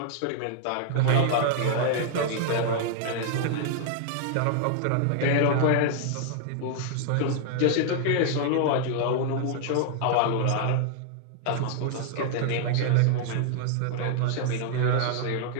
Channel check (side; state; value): both; different; correlation -0.01